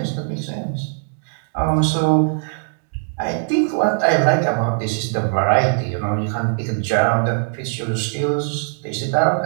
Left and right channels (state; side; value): silent; left; digital silence